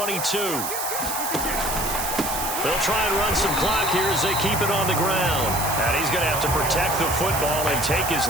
They'll try and run some clock here as they keep it on the ground. And he's going to have to protect the football and take his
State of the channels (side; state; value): right; noise; hiss, 4 dB below the sound